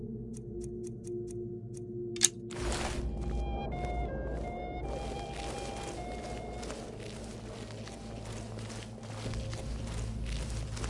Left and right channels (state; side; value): identical; both; correlation 1.00